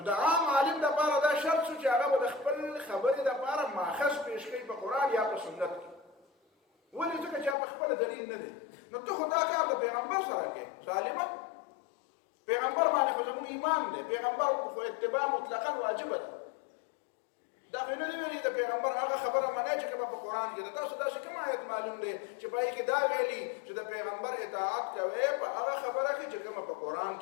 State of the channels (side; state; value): right; drops out; at 7.6 s